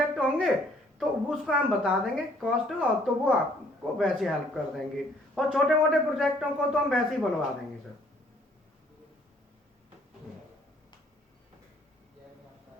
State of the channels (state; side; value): normal; both; correlation 0.61